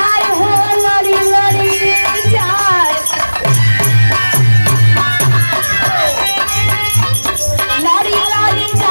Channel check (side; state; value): both; inverted; correlation -1.00